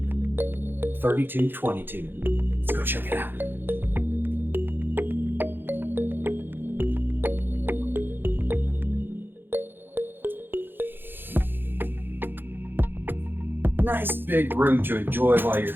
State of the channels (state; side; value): late; left; 0.099 ms